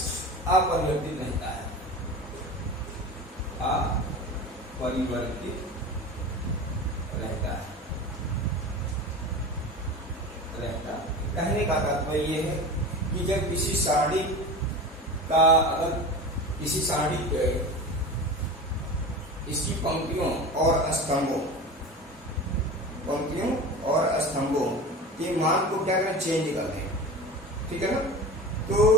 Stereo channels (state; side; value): normal; both; correlation 0.31